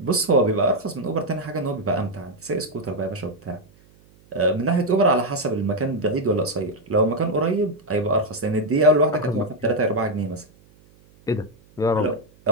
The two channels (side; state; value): right; noise; hum, 29 dB below the sound